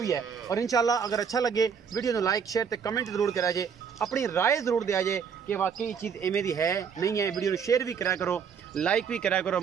है। और इंशाल्लाह अगर अच्छा लगे वीडियो को लाइक शेयर तो कमेंट जरूर करा जे, अपनी राय जरूर दिया जे कि वाकई चीज़ इवें दी है नहीं है। वीडियो को शेयर भी करा करो, लाइक भी करा करो,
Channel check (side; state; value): left; quieter; 6.8 dB